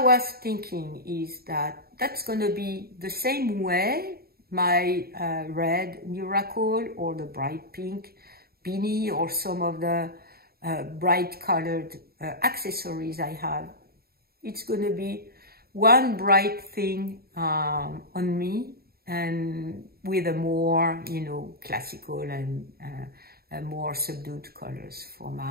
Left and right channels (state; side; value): late; left; 0.45 ms